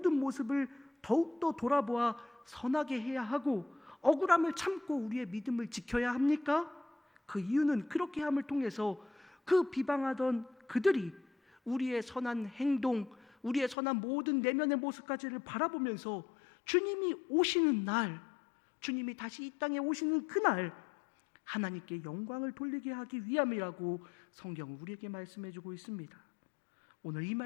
모습을 더욱더 돌아보아 선하게 해야 하고 억울함을 참고 우리의 믿음을 지켜야 합니까? 그 이유는 그렇게 함을 통해서 그 비방하던 그들이 우리의 선한 행동, 우리의 선한 모든 내면의 모습까지를 바라보면서 주님이 오시는 날, 주님이 다시 이 땅에 오시는 그날 하나님께 영광을 돌리게 하기 위함이라고 성경은 우리에게 말씀해주고 있습니다. 오늘 이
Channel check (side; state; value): right; drops out; at 13.8 s